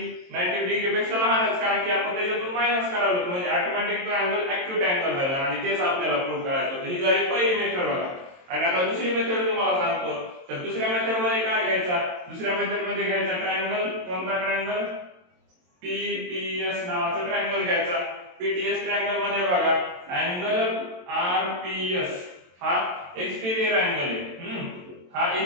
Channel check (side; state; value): left; late; 22 ms